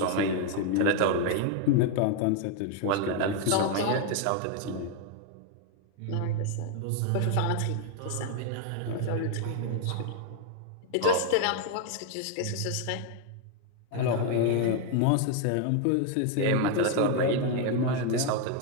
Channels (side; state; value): both; different; correlation 0.00